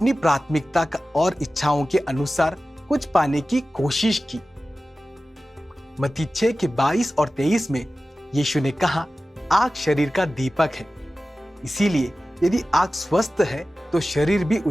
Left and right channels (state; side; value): normal; both; correlation 0.95